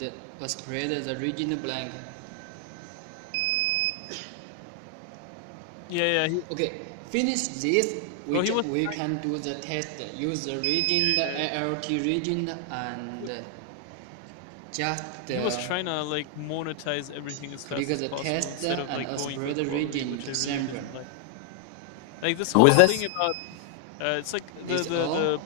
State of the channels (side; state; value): both; different; correlation 0.00